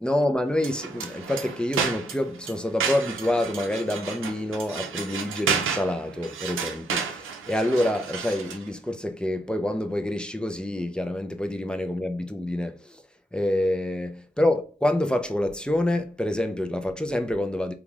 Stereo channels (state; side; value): normal; both; correlation 0.80